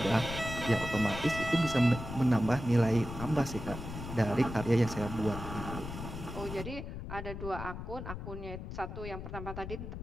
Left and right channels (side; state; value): left; noise; rumble, 8 dB below the sound